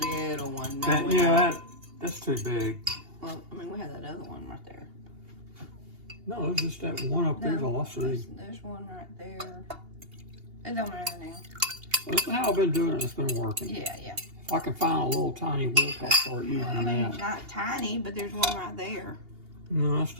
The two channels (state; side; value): late; left; 2.8 ms